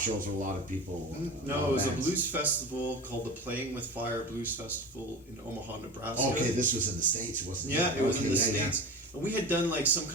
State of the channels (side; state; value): both; normal; correlation 0.31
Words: shows where a lot of people? No, it was a blues festival called the Playing with Fire Blues Festival in Omaha, Nebraska. Okay, this was in the States, wasn't it? Yeah, it was in the States. And we had done like some